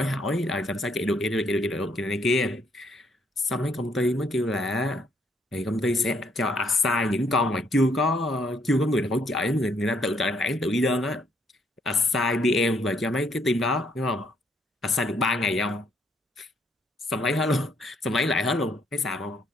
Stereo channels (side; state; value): both; normal; correlation 0.69